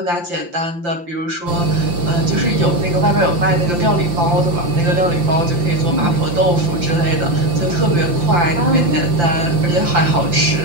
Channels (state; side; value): late; left; 5.8 ms